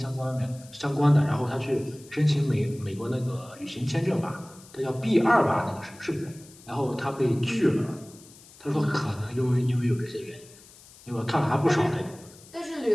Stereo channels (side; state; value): left; noise; hiss, 23 dB below the sound